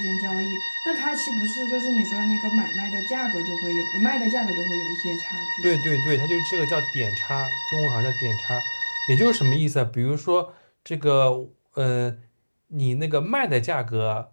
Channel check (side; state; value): both; inverted; correlation -1.00